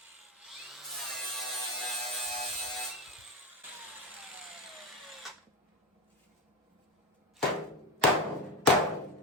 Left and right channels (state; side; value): normal; both; correlation 0.16